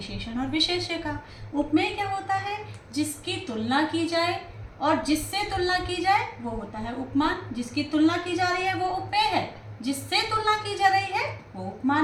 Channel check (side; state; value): both; identical; correlation 1.00